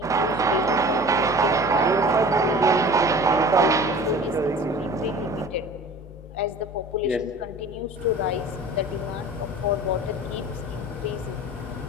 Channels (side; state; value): both; normal; correlation 0.42